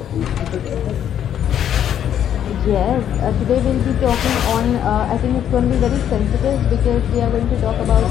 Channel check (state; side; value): quieter; right; 9.8 dB